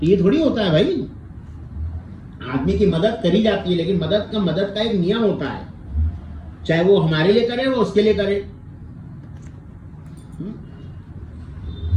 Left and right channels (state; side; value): identical; both; correlation 1.00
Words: ये थोड़ी होता है भाई। आदमी की मदद करी जाती है, लेकिन मदद का एक नियम होता है, चाहे वो हमारे लिए करे वो उसके लिए करे।